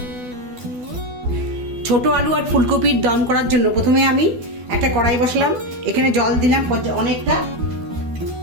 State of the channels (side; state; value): left; late; 12 ms